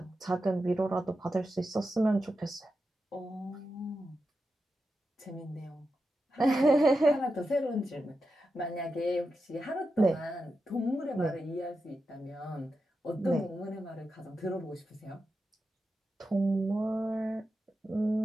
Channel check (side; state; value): both; normal; correlation 0.89